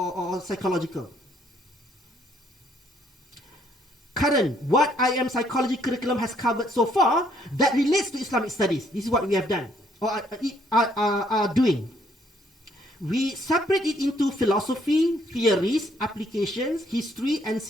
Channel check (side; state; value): both; normal; correlation 0.67